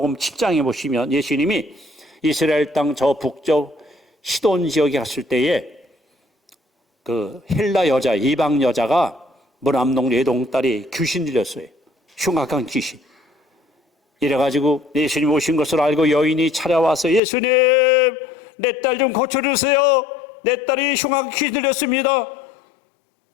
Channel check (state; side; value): drops out; right; at 17.2 s